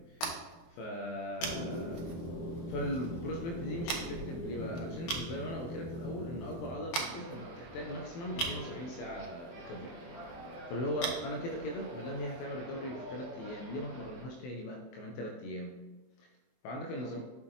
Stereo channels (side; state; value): right; late; 23 ms